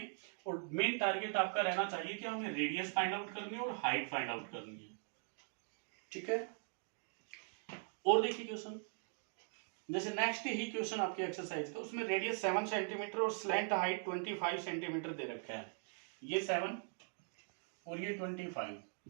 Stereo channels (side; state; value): left; silent; 50 dB below the other